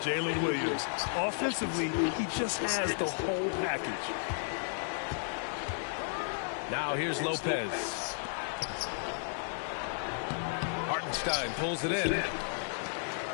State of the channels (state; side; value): silent; right; digital silence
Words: Williams. Offensively, he just has the whole package. Now here's Lopez. Hartenstein pulls it in.